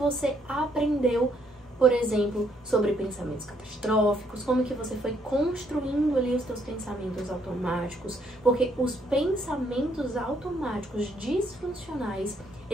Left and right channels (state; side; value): normal; both; correlation 0.70